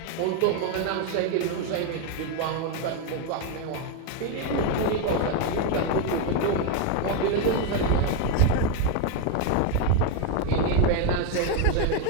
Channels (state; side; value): different; both; correlation 0.01